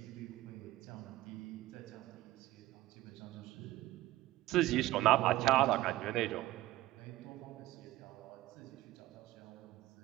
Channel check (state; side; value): quieter; left; 16.6 dB